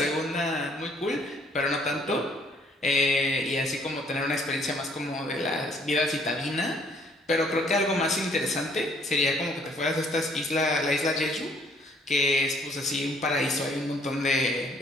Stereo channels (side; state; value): both; normal; correlation 0.63